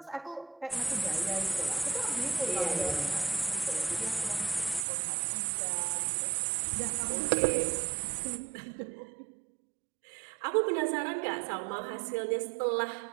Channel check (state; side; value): drops out; left; at 4.9 s